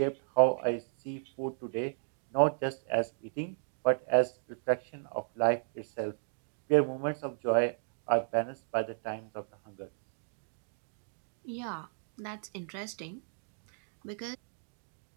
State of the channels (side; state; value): left; silent; digital silence